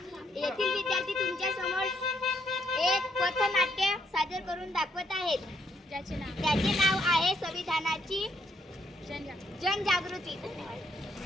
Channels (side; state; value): both; normal; correlation 0.73